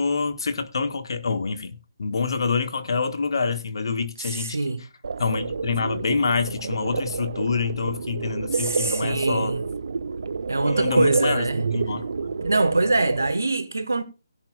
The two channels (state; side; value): inverted; both; correlation -0.80